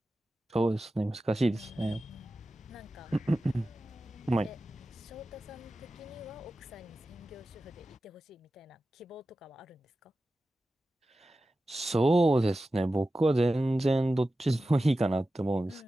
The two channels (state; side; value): normal; both; correlation 0.94